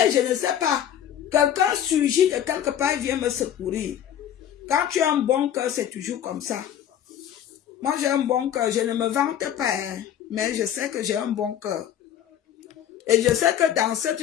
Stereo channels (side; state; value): right; quieter; 10.2 dB